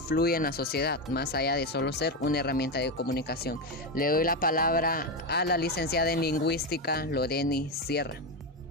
en la sociedad, más allá de solo ser una herramienta de comunicación? Le doy la palabra a la licenciada en lingüística, Loreni Sierra.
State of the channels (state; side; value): normal; both; correlation 0.12